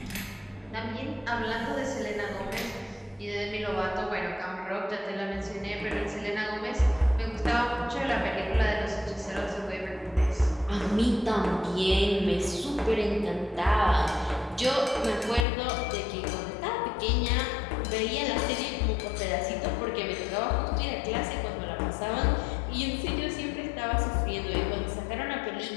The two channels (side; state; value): right; drops out; at 15.5 s